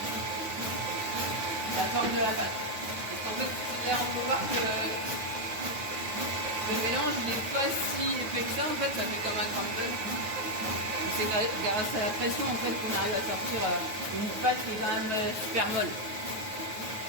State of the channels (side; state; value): left; late; 9.5 ms